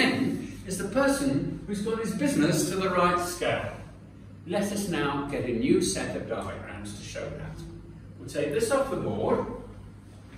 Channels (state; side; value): identical; both; correlation 1.00